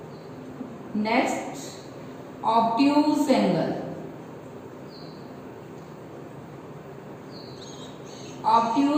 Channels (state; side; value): identical; both; correlation 1.00